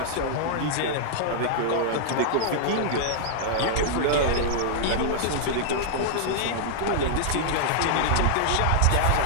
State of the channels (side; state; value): both; different; correlation -0.01